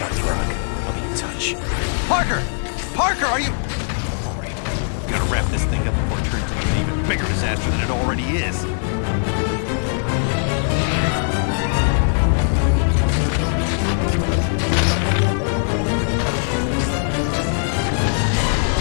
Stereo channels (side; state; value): right; silent; digital silence